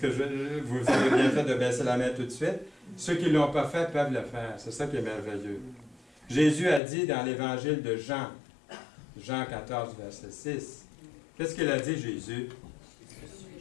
vous avez bien fait de baisser la main tout de suite. Ceux qui ne l'ont pas fait peuvent le faire. C'est ça qui est merveilleux. Jésus a dit dans l'évangile de Jean, Jean 14, verset 6, qu'est-ce qu'il a dit, Jésus?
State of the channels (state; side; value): drops out; right; at 6.8 s